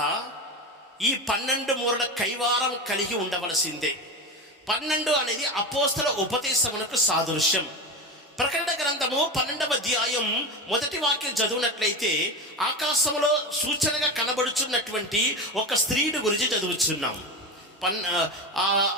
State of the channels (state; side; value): normal; both; correlation 0.22